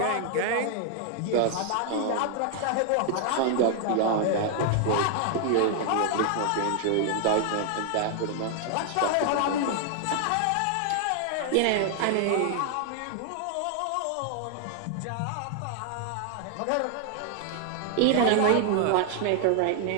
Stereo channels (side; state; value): both; different; correlation 0.00